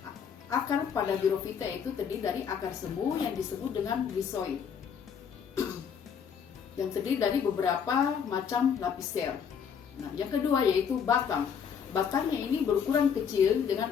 Akar pada Birofita itu terdiri dari akar semu yang disebut dengan rhizoid, yang terdiri dari beberapa macam lapis sel. Nah, yang kedua yaitu batang. Batangnya ini berukuran kecil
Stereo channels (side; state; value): right; quieter; 7.3 dB